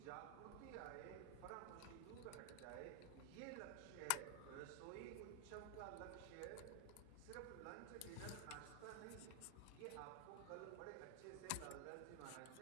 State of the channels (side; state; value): both; different; correlation 0.00